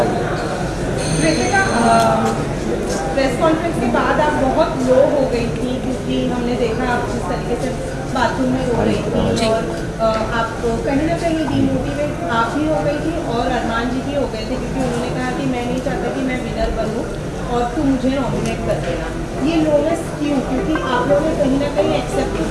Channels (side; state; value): both; identical; correlation 1.00